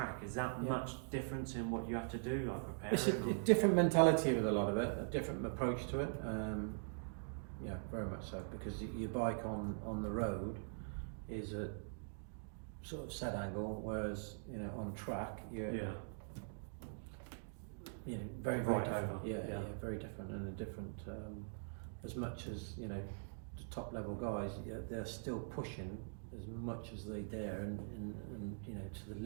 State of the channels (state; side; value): silent; left; digital silence